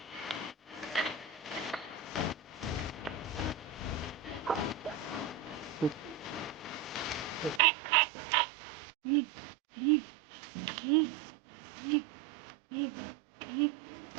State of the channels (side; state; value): left; drops out; at 7.6 s